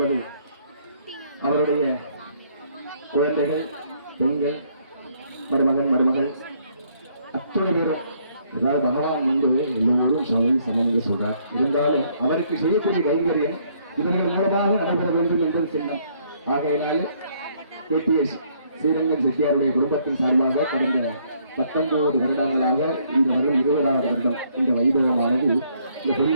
அவருடைய குழந்தைகள், பெண்கள், மருமகன் மருமகள் அத்தனை பேரும், அதாவது பகவான் வந்து எல்லோரும் சமம் சொல்றார். இருந்தாலும் அவருக்கு செய்யக்கூடிய கைங்கரியம் இவர்கள் மூலமாக நடைபெற வேண்டும் என்பது சின்னம். ஆகையினால KTS ஸ்ரீரங்கம் செட்டியாருடைய குடும்பத்தின் சார்பாக கடந்த 19 வருடங்களாக இந்த வருடம் 20வது வருடம் இந்த வைபவமானது இந்த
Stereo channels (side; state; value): both; inverted; correlation -0.67